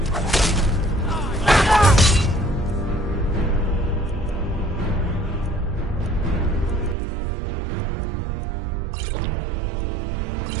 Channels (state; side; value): drops out; left; at 7.0 s